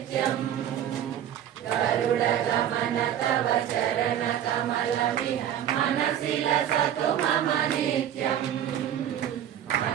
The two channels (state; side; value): quieter; left; 10.4 dB